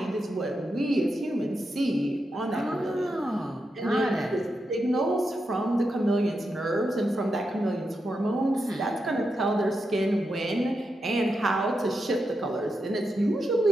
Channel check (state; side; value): normal; both; correlation 0.86